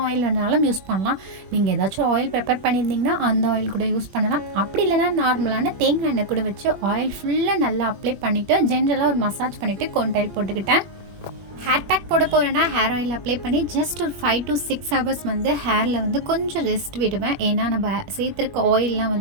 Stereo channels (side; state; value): left; late; 21 ms